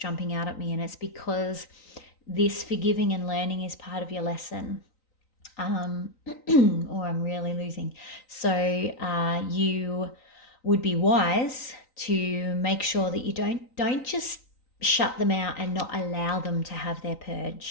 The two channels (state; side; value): late; right; 3.9 ms